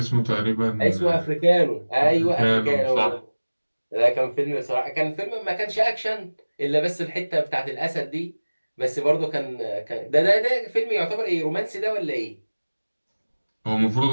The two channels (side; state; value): both; inverted; correlation -1.00